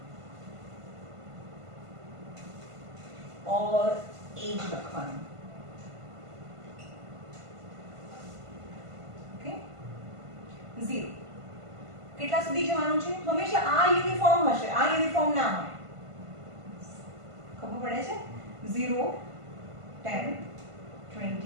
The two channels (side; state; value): left; late; 1.5 ms